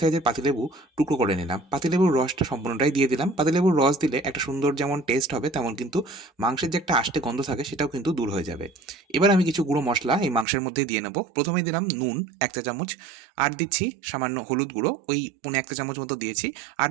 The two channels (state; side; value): drops out; left; at 10.5 s